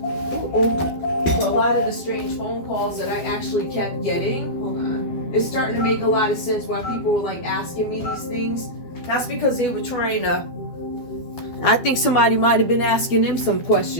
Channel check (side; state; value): right; late; 12 ms